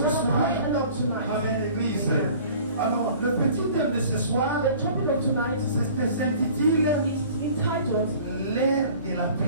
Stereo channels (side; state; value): both; inverted; correlation -0.48